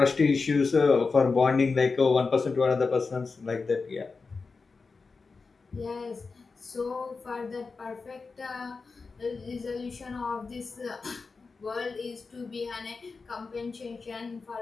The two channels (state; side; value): quieter; right; 4.4 dB